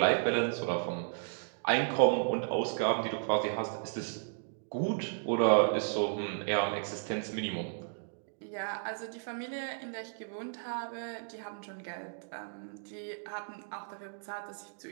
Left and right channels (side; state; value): left; silent; digital silence